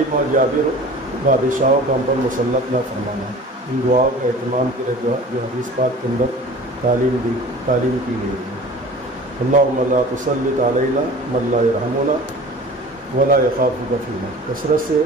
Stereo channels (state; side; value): normal; both; correlation 0.41